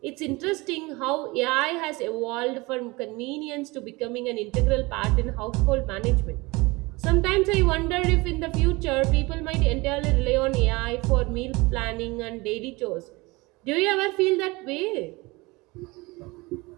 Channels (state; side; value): quieter; left; 23.7 dB